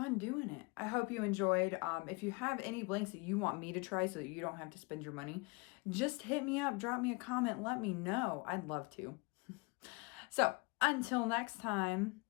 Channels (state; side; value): quieter; right; 28.2 dB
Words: doing it. I hope you enjoyed. If you have any blanks that you want me to try so that you don't have to spend your money, just hit me up, drop me a comment, let me know. I'd love to. So until next time,